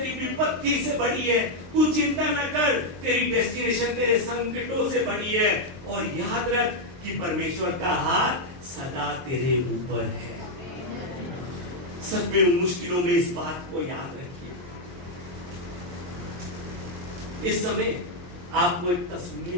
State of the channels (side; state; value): left; late; 23 ms